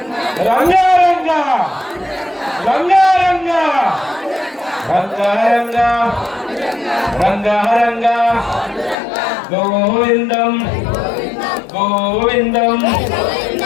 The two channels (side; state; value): right; drops out; at 9.0 s